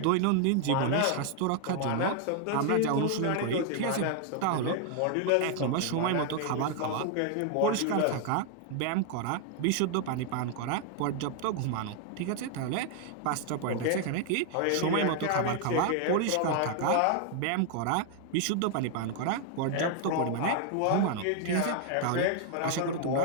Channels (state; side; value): different; both; correlation 0.00